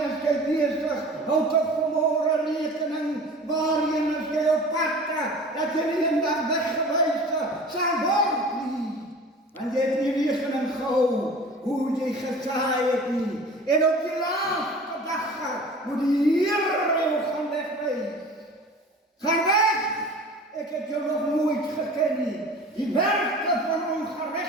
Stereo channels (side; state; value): both; normal; correlation 0.41